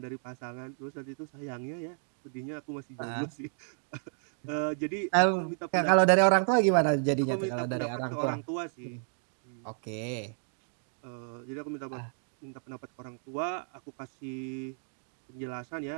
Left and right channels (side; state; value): left; silent; digital silence